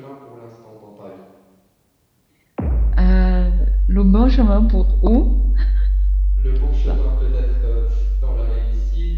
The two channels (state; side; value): identical; both; correlation 1.00